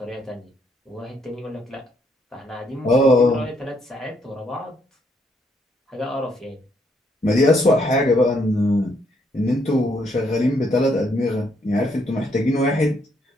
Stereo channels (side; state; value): both; normal; correlation 0.72